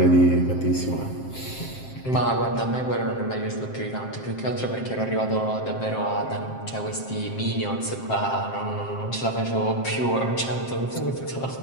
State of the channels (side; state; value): right; late; 7.6 ms